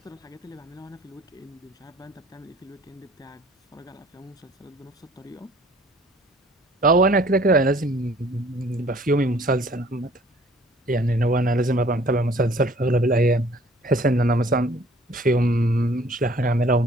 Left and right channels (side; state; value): both; normal; correlation 0.55